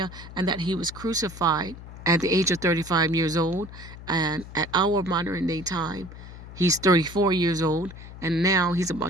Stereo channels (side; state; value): left; noise; hum, 14 dB below the sound